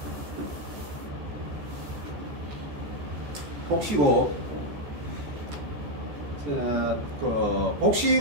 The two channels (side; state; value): left; late; 14 ms